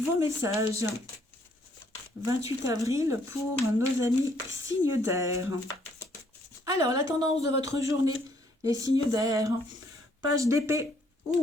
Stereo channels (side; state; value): both; normal; correlation 0.67